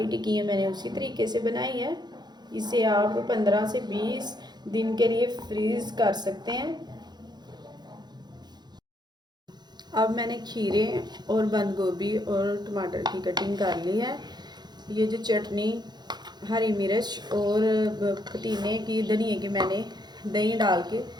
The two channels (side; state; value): left; late; 0.21 ms